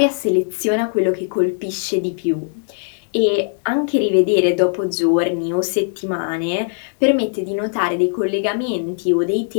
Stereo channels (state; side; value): silent; right; digital silence